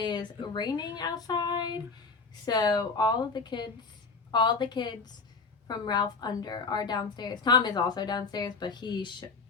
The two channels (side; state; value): right; quieter; 4.5 dB